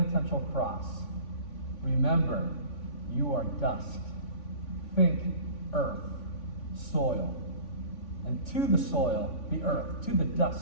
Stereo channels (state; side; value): late; right; 3.5 ms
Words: cross. Remember, you are dust. Think earth, soil. And to the soil, the earth, to the